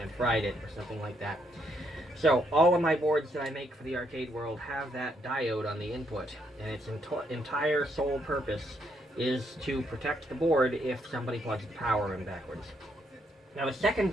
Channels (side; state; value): both; normal; correlation 0.74